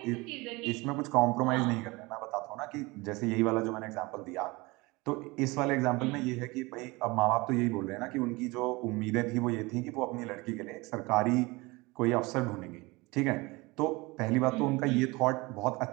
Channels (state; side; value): quieter; left; 23.6 dB